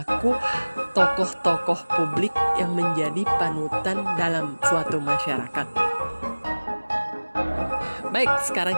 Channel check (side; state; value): both; inverted; correlation -1.00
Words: tokoh-tokoh publik yang menjadi panutan dalam suatu masyarakat. Baik, sekarang